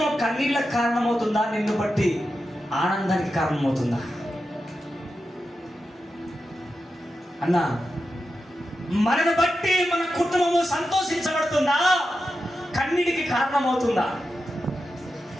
కన్నీళ్ళకి కారణమవుతుందా, నిన్ను బట్టి ఆనందానికి కారణమవుతుందా? అన్నా మనను బట్టి మన కుటుంబము సంతోషించబడుతుందా, కన్నీటికి కారణమవుతుందా?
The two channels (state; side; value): normal; both; correlation 0.90